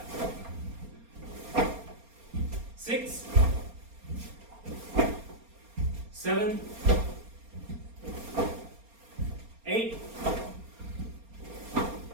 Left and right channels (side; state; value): left; late; 4.3 ms